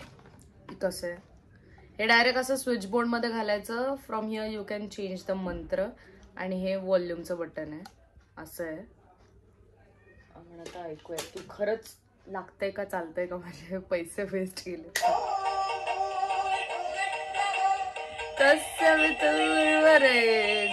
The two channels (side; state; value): both; identical; correlation 1.00